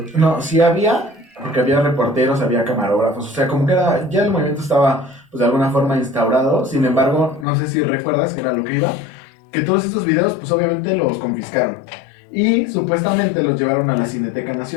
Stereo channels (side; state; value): right; drops out; at 7.5 s